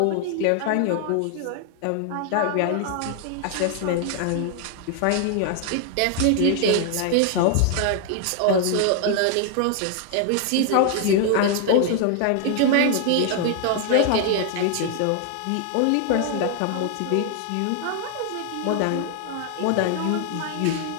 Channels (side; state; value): both; different; correlation 0.00